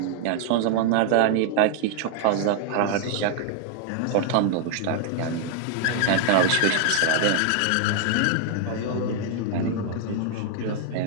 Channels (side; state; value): both; different; correlation 0.00